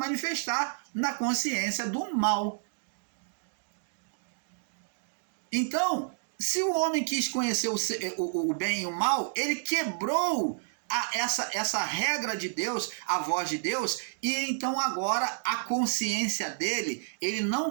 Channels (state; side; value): silent; left; digital silence